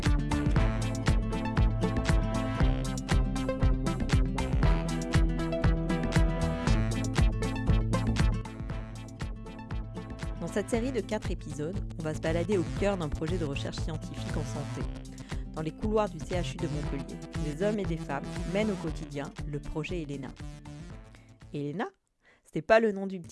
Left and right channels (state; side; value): identical; both; correlation 1.00